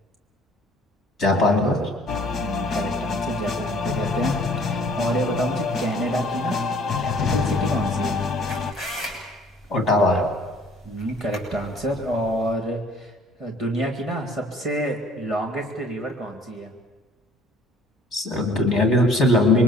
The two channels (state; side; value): normal; both; correlation 0.55